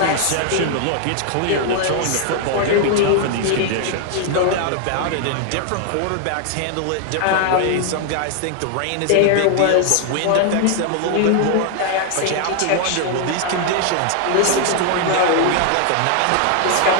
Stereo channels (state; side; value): different; both; correlation 0.00